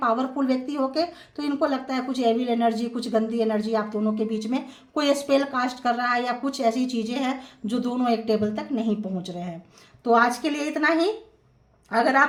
व्यक्ति होके। तो इनको लगता है कुछ एविल एनर्जी, कुछ गंदी एनर्जी आप दोनों के बीच में कोई स्पेल कास्ट कर रहा है, या कुछ ऐसी चीज़ें हैं जो दोनों एक टेबल तक नहीं पहुंच रहे हैं। तो आज के लिए इतना ही। अगर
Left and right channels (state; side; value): identical; both; correlation 1.00